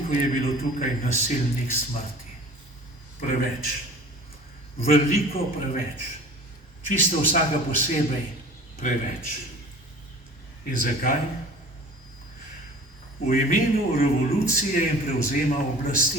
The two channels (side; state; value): both; normal; correlation 0.44